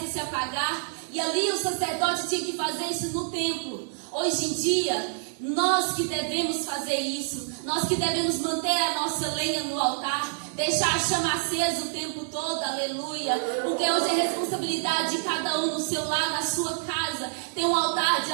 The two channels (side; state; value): left; silent; digital silence